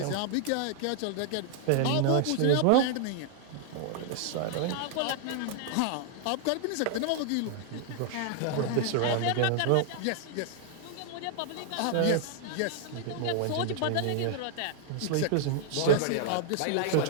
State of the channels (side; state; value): both; different; correlation 0.00